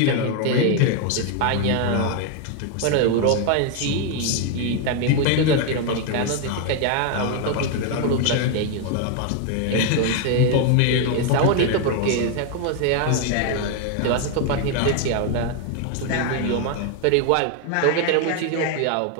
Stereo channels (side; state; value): both; different; correlation 0.01